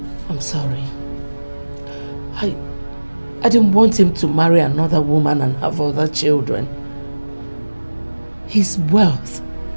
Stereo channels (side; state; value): both; inverted; correlation -1.00